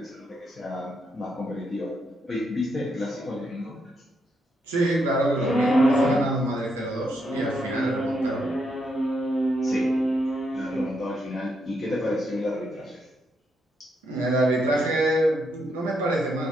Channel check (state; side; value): normal; both; correlation 0.79